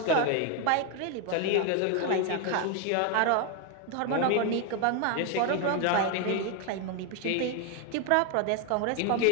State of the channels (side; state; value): both; different; correlation 0.01